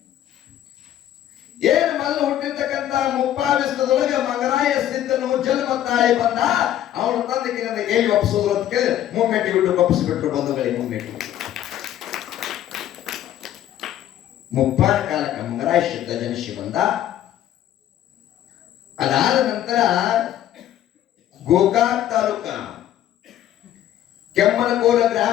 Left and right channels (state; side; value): quieter; right; 11.9 dB